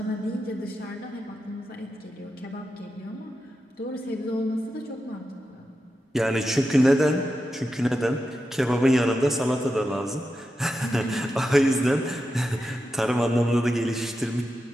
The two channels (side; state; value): both; normal; correlation 0.89